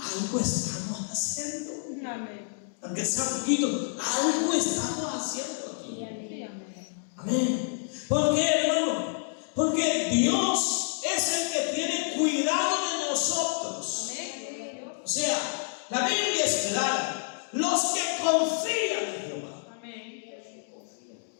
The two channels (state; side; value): silent; right; digital silence